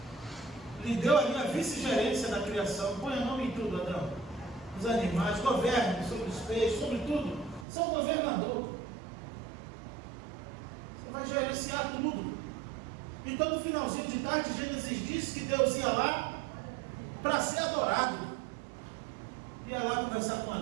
Lhe deu ali a vice-gerência da criação. Põe o nome em tudo, Adão. Os animais, governe sobre os peixes, sobre tudo. Você é um governador. Você vai gerenciar tudo. Então no finalzinho de tarde, Gênesis diz que Deus ia lá para ser adorado. Ia lá conversar com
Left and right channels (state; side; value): drops out; left; at 7.7 s